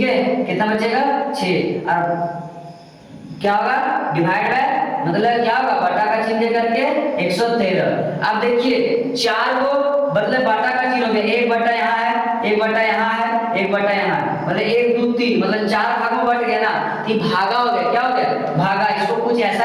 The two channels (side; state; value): both; identical; correlation 1.00